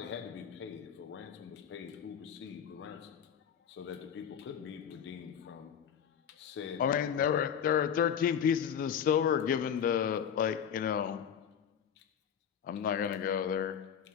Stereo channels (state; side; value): quieter; right; 8.3 dB